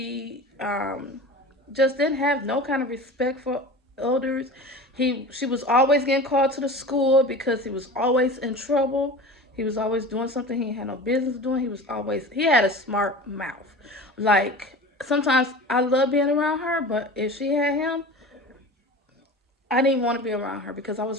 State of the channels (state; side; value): normal; both; correlation 0.35